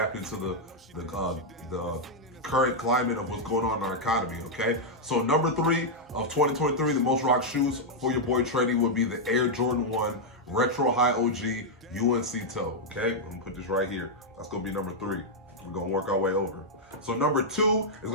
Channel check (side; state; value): both; normal; correlation -0.04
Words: to the current climate of what's going on in our economy, okay? So number 3 of 2023, the most rock shoes for your boy TrayD would be the Air Jordan 1 Retro High OG UNC Toe, okay? I'm gonna put this right here. That's gonna be number 3. We're gonna work our way over. So number 2 is